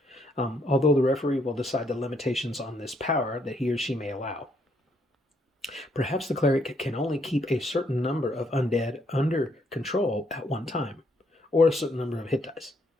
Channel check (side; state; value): both; normal; correlation 0.72